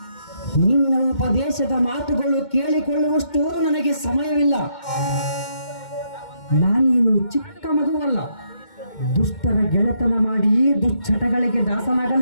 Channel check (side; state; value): right; late; 2.1 ms